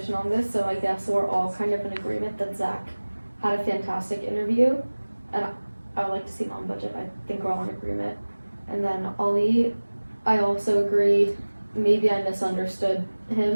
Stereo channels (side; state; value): both; inverted; correlation -1.00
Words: on this, so I guess we're all kind of in agreement that Zach had a fantastic interview. And I would like to see him on budget. I think we're all in agreement. And then Ali, I also agree, maybe I misunderstood